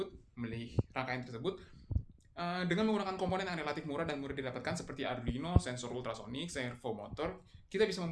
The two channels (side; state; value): both; identical; correlation 1.00